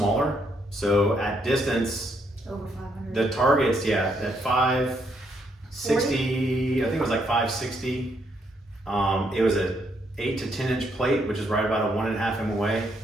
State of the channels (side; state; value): both; normal; correlation 0.74